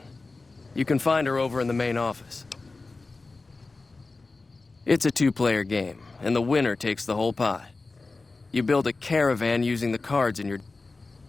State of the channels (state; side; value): quieter; right; 3.6 dB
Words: You can find her over in the main office. It's a two-player game, and the winner takes the whole pie. You build a caravan using the cards in your...